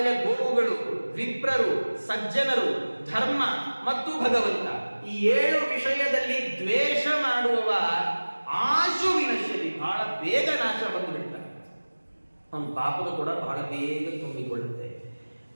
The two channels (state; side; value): inverted; both; correlation -1.00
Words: ಗೋವುಗಳು, ವಿಪ್ರರು, ಸಜ್ಜನರು, ಧರ್ಮ ಮತ್ತು ಭಗವಂತ. ಈ 7 ವಿಷಯದಲ್ಲಿ ದ್ವೇಷ ಮಾಡುವವ ಆಶು ವಿನಶ್ಯತಿ, ಬಹಳ ಬೇಗ ನಾಶ ಬಂದುಬಿಡ್ತಾನೆ. ಅವನ ಪಾಪದ ಕೂಡ ಬಹಳ ಬೇಗ ತುಂಬಿಕೊಳ್ಳುತ್ತೆ.